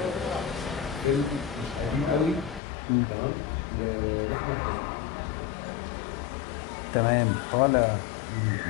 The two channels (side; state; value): right; drops out; at 2.6 s